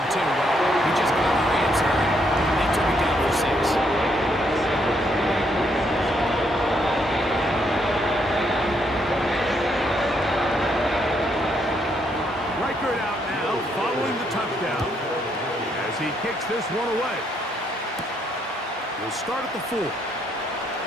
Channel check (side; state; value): both; normal; correlation 0.74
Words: 2? Well, we just got our answer. They took it down for 6. Out now, following the touchdown, as he kicks this one away. He'll start at the 4.